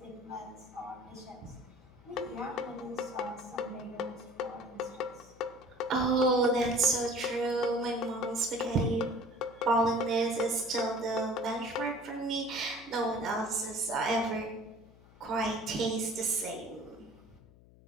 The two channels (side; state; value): left; noise; hum, 24 dB below the sound